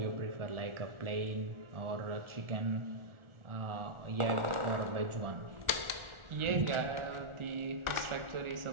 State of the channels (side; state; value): left; late; 1.4 ms